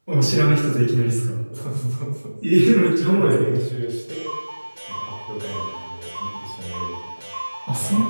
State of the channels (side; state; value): both; inverted; correlation -1.00